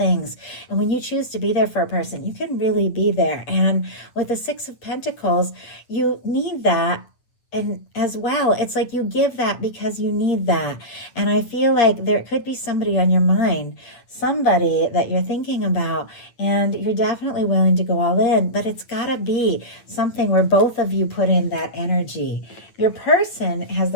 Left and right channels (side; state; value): right; late; 8.8 ms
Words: And when you choose to be there for a person, you can really be there. And with the Six of Pentacles, you need that. And as well, it's like you give that because you need that. And I feel like there could be somebody on your mind, somebody that you're thinking about, and you're definitely willing to go all in, but it's got to be something where both of you put in that energy. Your person has